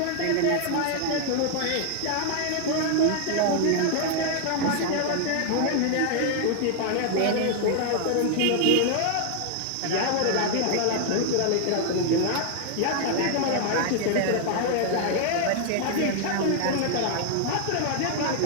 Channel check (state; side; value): different; both; correlation 0.00